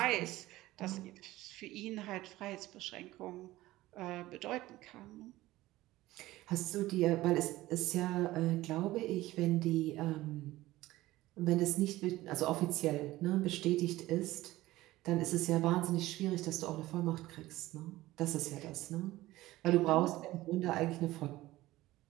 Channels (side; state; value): left; quieter; 17.1 dB